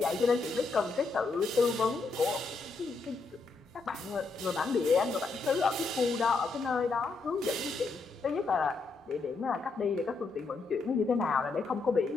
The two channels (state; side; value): quieter; right; 4.0 dB